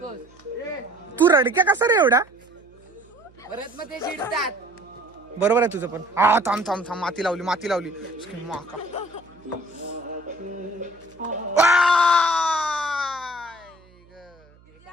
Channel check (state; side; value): noise; right; hum, 28 dB below the sound